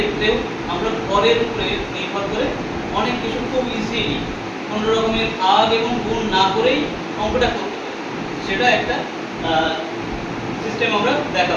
আমরা ভরের উপরে নির্ভর করে অনেক কিছু খুব ইজিলি কোনো রকমের ভাগ এবং গুণ না করেই অঙ্কটা করতে পারি। সেটা একটা সিস্টেম আমরা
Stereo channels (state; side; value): identical; both; correlation 1.00